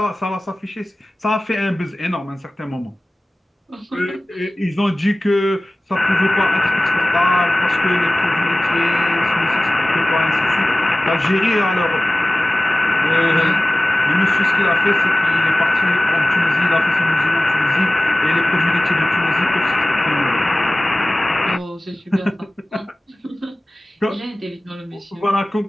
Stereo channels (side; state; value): both; normal; correlation 0.97